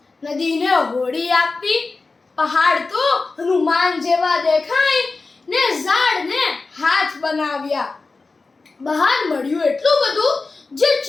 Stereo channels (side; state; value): right; quieter; 3.9 dB